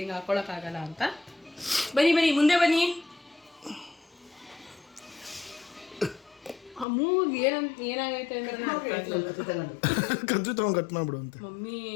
ಹಾಕೊಳಕ್ ಆಗಲ್ಲ ಅಂತ. ಬನ್ನಿ ಬನ್ನಿ ಮುಂದೆ ಬನ್ನಿ. ಮೂಗ್ ಏನಾಗೈತೆ ಅಂದ್ರೆ ಕದ್ದು ತಗೊಂಡ್ ಕಟ್ ಮಾಡ್ಬಿಡು ಅಂತ. ಮಮ್ಮಿ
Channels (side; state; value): right; drops out; at 6.9 s